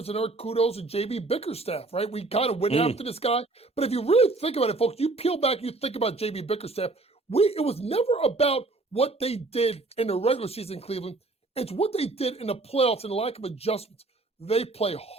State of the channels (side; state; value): left; quieter; 3.3 dB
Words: and our kudos to J.B. Bickerstaff, right? We kind of went after this guy. But if you really think about it, folks, you peel back, you think about J.B. Bickerstaff, it was never about what they did in the regular season in Cleveland. It's what they did in the playoffs and the lack of adjustments. They play